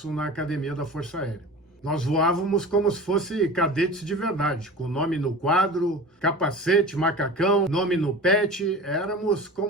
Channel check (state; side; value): normal; both; correlation 0.36